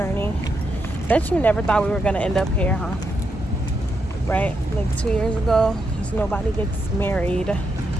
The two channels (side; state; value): both; normal; correlation 0.82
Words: Bet you never thought we were gonna end up here, huh? Right? Like 2 years ago, because nobody gets married